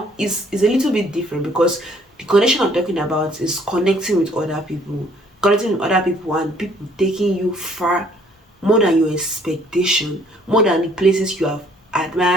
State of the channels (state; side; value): normal; both; correlation 0.61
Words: it's a little bit different because the connection I'm talking about is connecting with other people, and people taking you far, more than your expectation, more than the places you have